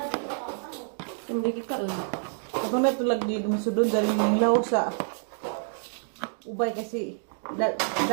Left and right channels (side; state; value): left; silent; digital silence